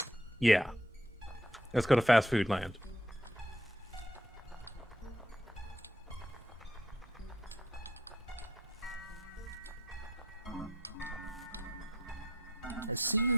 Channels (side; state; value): both; normal; correlation 0.67